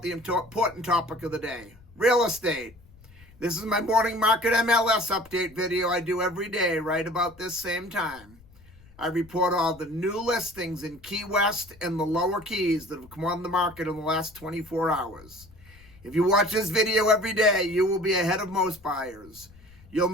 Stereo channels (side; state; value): left; noise; rumble, 24 dB below the sound